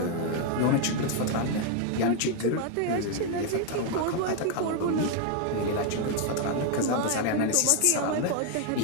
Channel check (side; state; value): both; different; correlation 0.01